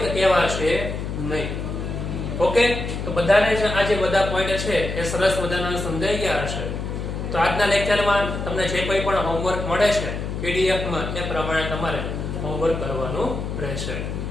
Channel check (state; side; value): noise; left; hum, 5 dB below the sound